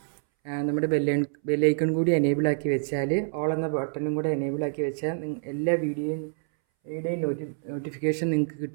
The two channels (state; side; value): silent; left; 60 dB below the other